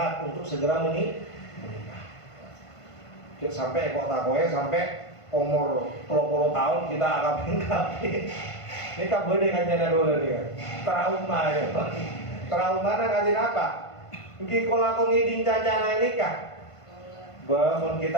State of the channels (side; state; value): right; late; 1.5 ms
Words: untuk segera menikah. Sampai kok takwa sampai umur 30 tahun kita akabin. Ini kan boleh kan jana dulu nih. Trauma ya. Trauma nak kajian apa? Mungkin kalau aku ngiding cacana nikah. Bangun kita